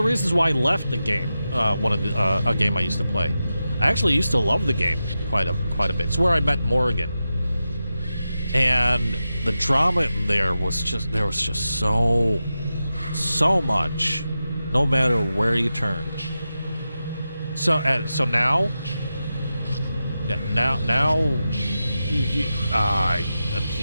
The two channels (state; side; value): inverted; both; correlation -0.91